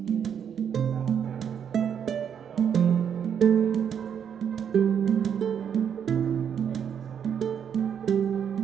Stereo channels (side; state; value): left; quieter; 8.1 dB